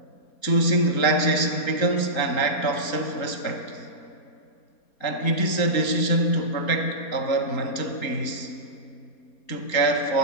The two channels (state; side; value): late; right; 4.2 ms